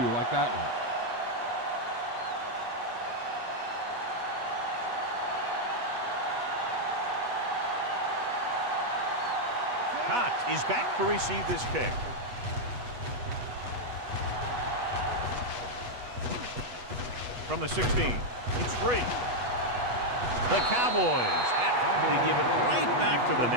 like that one. Cox is back to receive this kick. From the 16, it's free. The Cowboys have to give it right back to the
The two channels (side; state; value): left; late; 8.2 ms